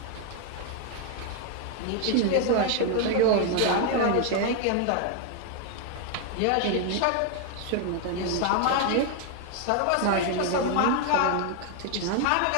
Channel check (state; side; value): different; both; correlation 0.00